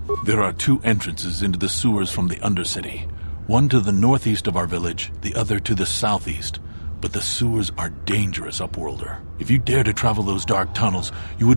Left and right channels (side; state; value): both; inverted; correlation -1.00